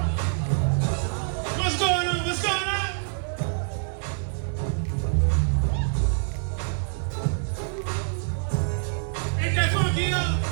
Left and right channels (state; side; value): silent; left; 58 dB below the other